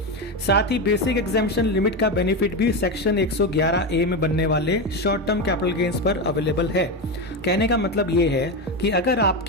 साथ ही बेसिक एग्जेम्पशन लिमिट का बेनिफिट भी सेक्शन 111A में बनने वाले शॉर्ट टर्म कैपिटल गेन्स पर अवेलेबल है। कहने का मतलब ये है कि अगर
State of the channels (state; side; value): normal; both; correlation 0.15